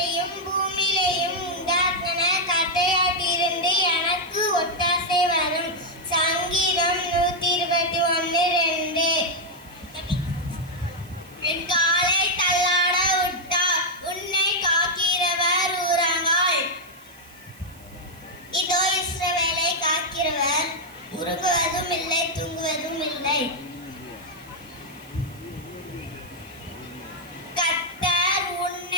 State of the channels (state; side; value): noise; right; hiss, 24 dB below the sound